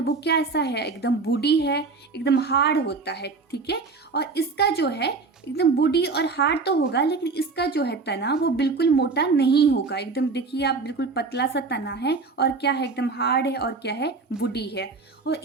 क्या ऐसा है, एकदम वुडी है, एकदम हार्ड होता है, ठीक है। और इसका जो है एकदम वुडी और हार्ड तो होगा, लेकिन इसका जो है तना वो बिल्कुल मोटा नहीं होगा। एकदम देखिए आप, बिल्कुल पतला सा तना है और क्या है, एकदम हार्ड है और क्या है, वुडी है। और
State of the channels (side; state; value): left; quieter; 4.2 dB